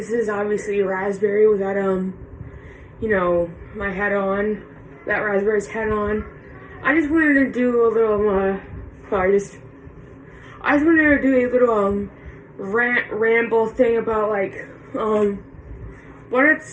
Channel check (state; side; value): identical; both; correlation 1.00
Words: is obviously Raspberry without my head on, that Raspberry's head on. I just wanted to do a little, I just wanted to do a little, ramble thing about, what